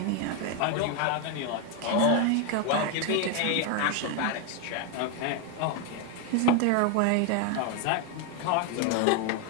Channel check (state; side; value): different; both; correlation 0.01